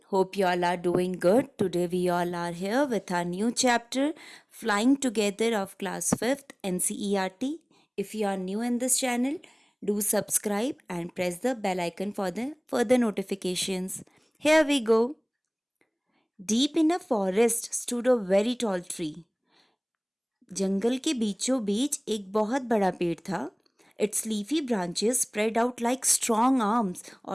hope you all are doing good. Today we all are here with our new chapter Flying Together of class 5th NCERT. If you are new in this channel, do subscribe and press the bell icon for the further notifications. Here we go. Deep in a forest stood a very tall tree. जंगल के बीचों बीच एक बहुत बड़ा पेड़ था. It's leafy branches spread out like strong arms,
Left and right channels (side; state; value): both; identical; correlation 1.00